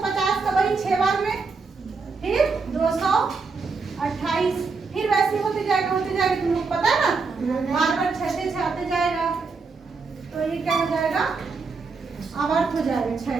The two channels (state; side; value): quieter; left; 4.5 dB